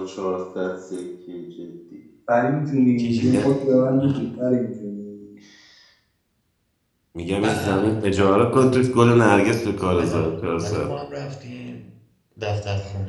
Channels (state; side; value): identical; both; correlation 1.00